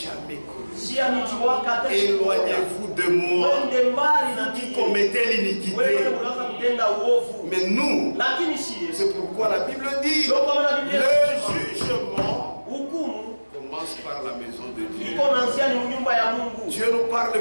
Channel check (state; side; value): inverted; both; correlation -1.00